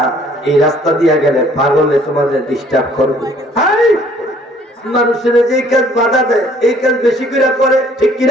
এই রাস্তা দিয়ে গেলে পাগলে তোমাদের ডিস্টার্ব করবে। মানুষের যে কাজ বাধা দেয় এই কাজ বেশি করে, ঠিক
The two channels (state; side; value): normal; both; correlation 0.59